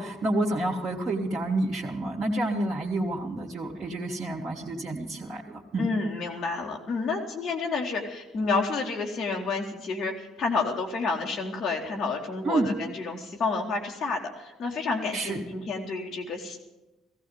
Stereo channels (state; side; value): normal; both; correlation 0.69